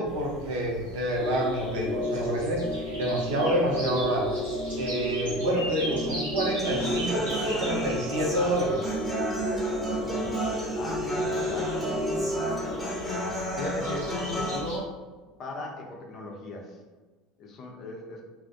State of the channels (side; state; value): both; normal; correlation 0.35